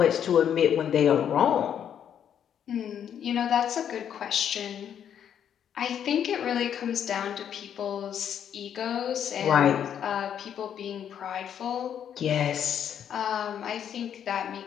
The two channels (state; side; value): quieter; right; 9.0 dB